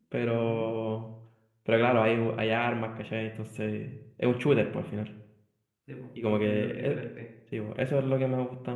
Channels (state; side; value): identical; both; correlation 1.00